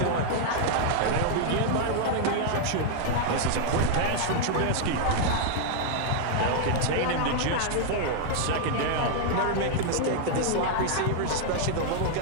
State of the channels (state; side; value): different; both; correlation 0.00